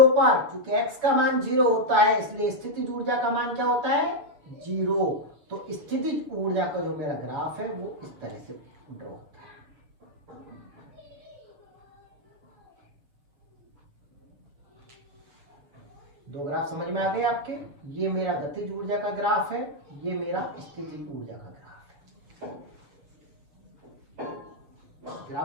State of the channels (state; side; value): late; left; 7.2 ms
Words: पर, चूंकि x का मान 0 होता है इसलिए स्थितिज ऊर्जा का मान क्या होता है 0। तो स्थितिज ऊर्जा का जो मेरा ग्राफ है वो इस तरह से ड्रॉ होता है। दो ग्राफ समझ में आ गए आपके। ये मेरा गतिज ऊर्जा का ग्राफ है, ये मेरा स्थितिज ऊर्जा का ग्राफ है।